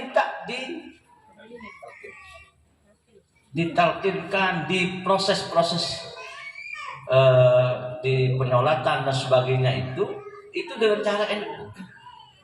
ditalkinkan di proses-proses di penyolatan dan sebagainya itu dengan cara NU.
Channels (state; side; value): identical; both; correlation 1.00